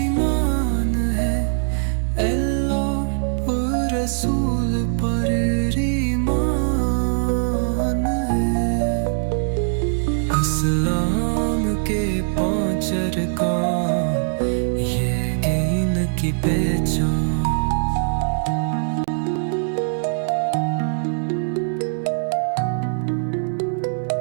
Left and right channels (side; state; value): left; silent; digital silence